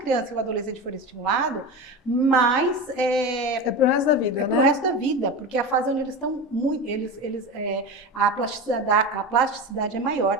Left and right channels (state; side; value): normal; both; correlation 0.25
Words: e o adolescente for estimulado, mais é para o resto da vida, para o resto da vida, porque a fase onde eles estão a plasticidade é